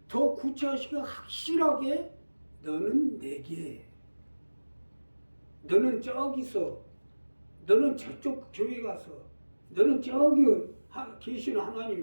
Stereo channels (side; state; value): both; inverted; correlation -1.00